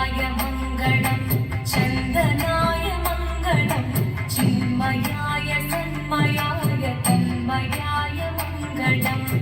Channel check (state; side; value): identical; both; correlation 1.00